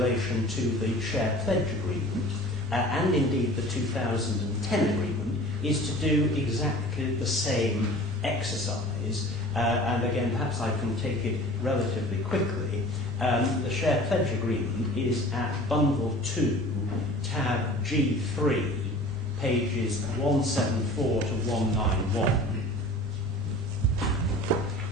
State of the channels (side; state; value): both; normal; correlation 0.43